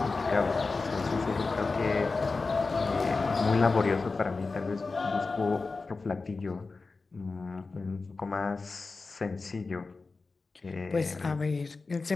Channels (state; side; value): quieter; right; 4.0 dB